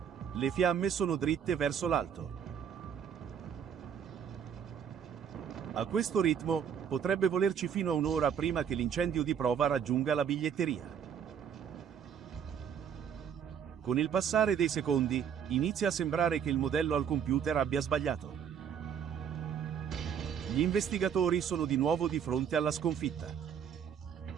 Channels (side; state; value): left; quieter; 8.0 dB